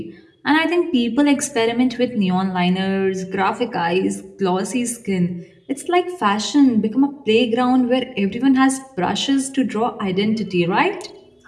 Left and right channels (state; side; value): identical; both; correlation 1.00